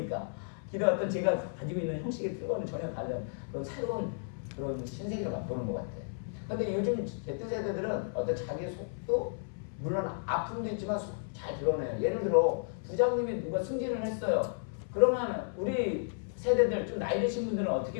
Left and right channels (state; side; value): silent; right; 56 dB below the other